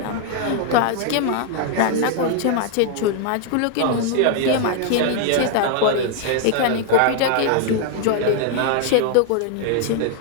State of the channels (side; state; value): both; different; correlation 0.00